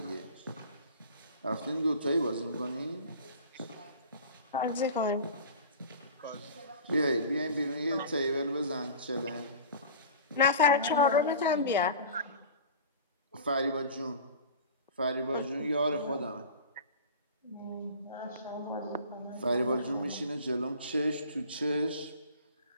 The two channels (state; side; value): inverted; both; correlation -0.39